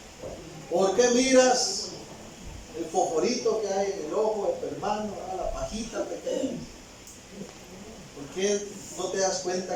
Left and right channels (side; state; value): both; identical; correlation 1.00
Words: ¿Por qué miras el fosforito que hay en el ojo de tu hermano, la pajita pequeña? ¿Por qué no te das